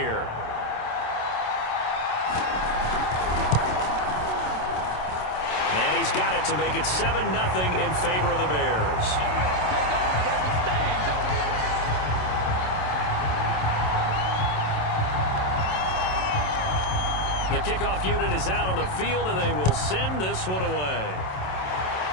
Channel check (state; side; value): late; right; 27 ms